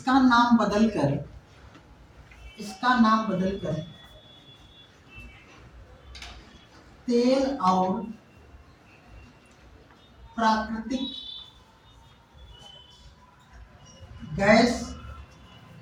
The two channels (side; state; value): both; identical; correlation 1.00